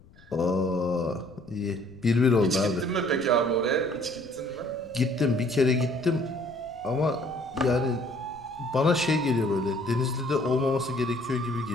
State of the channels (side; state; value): left; noise; rumble, 25 dB below the sound